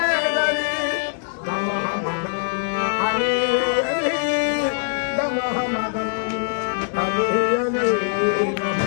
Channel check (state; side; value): silent; right; digital silence